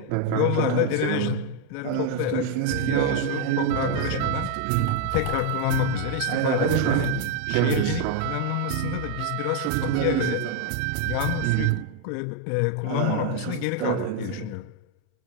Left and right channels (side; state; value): both; different; correlation 0.01